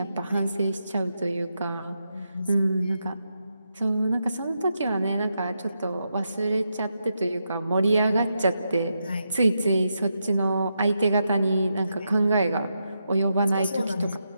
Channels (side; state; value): both; inverted; correlation -0.84